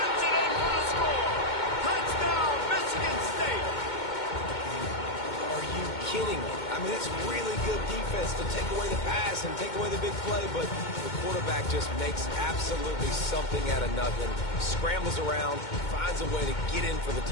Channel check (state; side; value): late; right; 2.2 ms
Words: it in for the score. Touchdown, Michigan State. Are you kidding me? I mean, it's really good defense to take away the pass and take away the big play, but the quarterback just makes absolutely something out of nothing, scrambles around, finds a way to get in for the